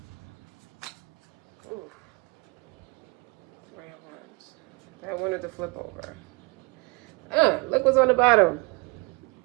ooh, rare ones. I wanted to flip over. Look what's on the bottom.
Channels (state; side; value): quieter; left; 27.5 dB